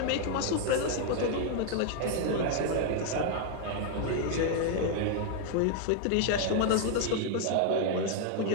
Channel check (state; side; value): different; both; correlation 0.00